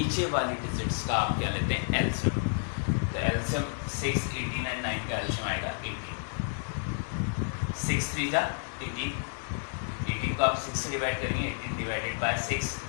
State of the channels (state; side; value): silent; right; digital silence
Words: वाली डिजिट्स का आप क्या लेते हैं? एलसीएम। तो एलसीएम 6, 18 एंड 9 का एलसीएम आएगा 18। 6 3 जा 18, 18 को आप 6 से डिवाइड करेंगे। 18 divided by 6